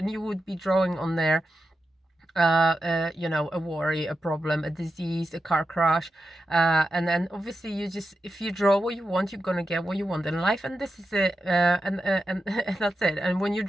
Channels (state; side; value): normal; both; correlation 0.90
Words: you would be drawing on there a worry, a problem, a disease, a car crash, and then obviously if you draw what you want, you're gonna get what you want in life, and this is it, and that's it. And when you're